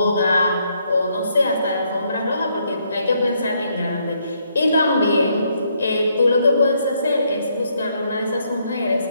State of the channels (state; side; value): inverted; both; correlation -0.73